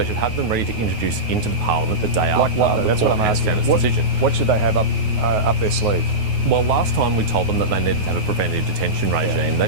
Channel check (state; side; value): late; left; 9.4 ms